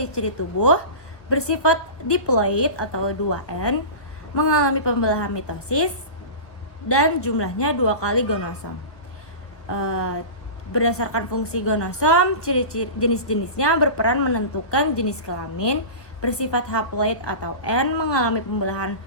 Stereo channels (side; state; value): right; late; 1.4 ms